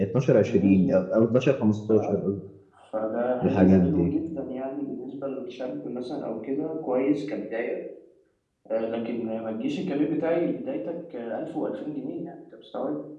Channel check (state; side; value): identical; both; correlation 1.00